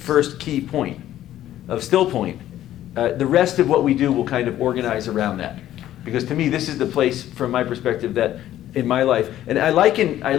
key point of Stillpoint, the rest of what we do will kind of organize around that. Because to me, this is the place, from my perspective, that in my life, and I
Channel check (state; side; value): quieter; right; 12.8 dB